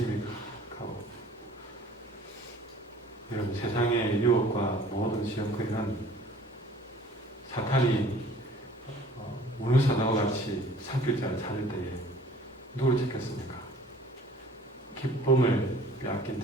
가득하고, 여러분, 세상의 유혹과 모든 시험거리는 사탄이 문을사다와 같이 산길자를 찾을 때에 누구를 찾겠습니까? 기쁨을 빼앗긴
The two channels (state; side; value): normal; both; correlation 0.50